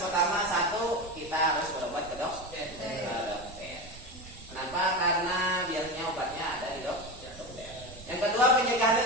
satu kita harus berobat ke dokter. Kenapa? Karena biasanya obatnya ada di dokter. Yang kedua pencegahannya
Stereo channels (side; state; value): right; noise; rumble, 18 dB below the sound